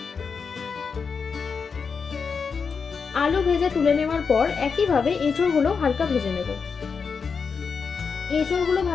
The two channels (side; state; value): right; quieter; 5.6 dB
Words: আলু ভেজে তুলে নেওয়ার পর একইভাবে এঁচোড়গুলো হালকা ভেজে নেব। এঁচোড়গুলো